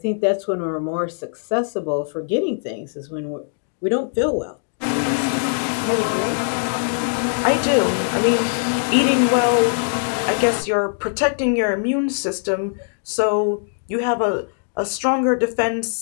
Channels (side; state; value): right; silent; digital silence